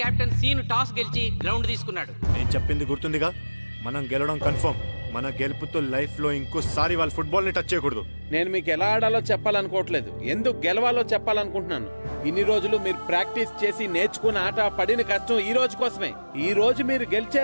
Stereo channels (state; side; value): inverted; both; correlation -1.00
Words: కెప్టెన్ సీను టాస్ గెలిచి గ్రౌండ్ తీసుకున్నాడు. నేను చెప్పింది గుర్తుందిగా, మనం గెలవడం కన్ఫర్మ్. మన గెలుపుతో లైఫ్ లో ఇంకోసారి వాళ్ళ ఫుట్బాల్ ని టచ్ చేయకూడదు. నేను మీకు ఎలా ఆడాలో చెప్పాలనుకోవట్లేదు, ఎందుకు గెలవాలో చెప్పాలనుకుంటున్నాను. ఇన్ని రోజులు మీరు ప్రాక్టీస్ చేసి నేర్చుకున్న ఆట పడిన కష్టం ఈ రోజు కోసమే. ఈ రోజు మీరు